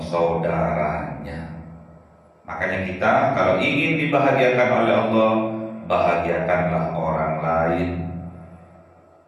Makanya kita kalau ingin dibahagiakan oleh Allah, bahagiakanlah orang lain.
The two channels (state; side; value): identical; both; correlation 1.00